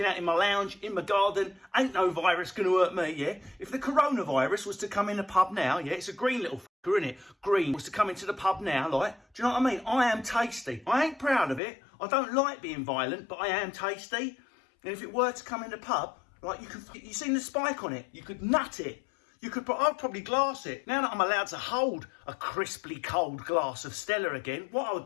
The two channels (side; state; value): right; drops out; at 11.6 s